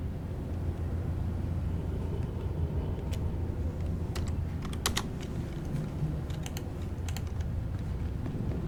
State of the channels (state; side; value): identical; both; correlation 1.00